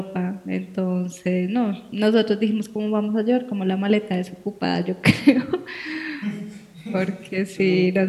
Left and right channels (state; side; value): identical; both; correlation 1.00